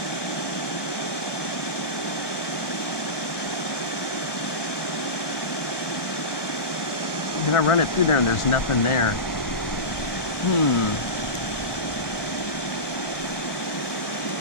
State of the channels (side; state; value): right; late; 1.2 ms